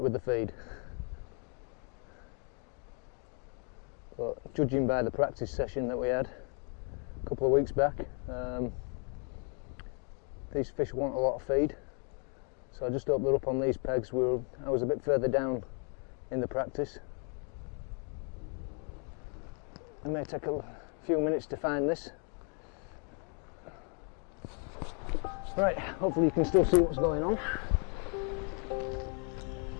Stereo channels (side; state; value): right; quieter; 39.6 dB